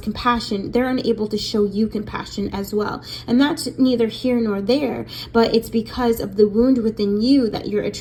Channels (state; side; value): identical; both; correlation 1.00